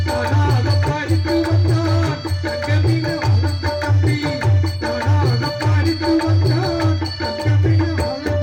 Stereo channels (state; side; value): identical; both; correlation 1.00